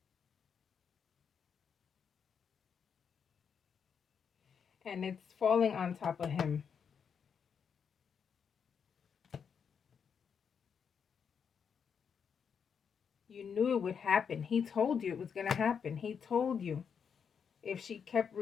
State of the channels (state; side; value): quieter; right; 6.9 dB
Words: And it's falling on top of him. You knew it would happen. He told you it was going to happen. He told you if she kept